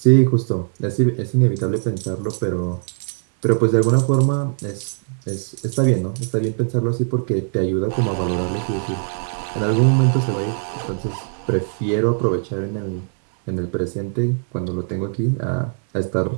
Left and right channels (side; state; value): left; silent; digital silence